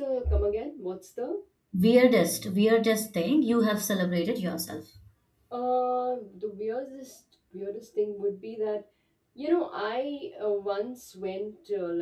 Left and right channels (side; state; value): both; identical; correlation 1.00